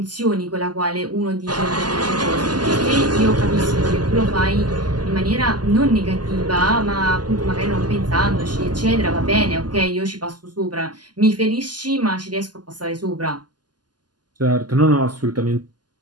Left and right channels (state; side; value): late; left; 0.70 ms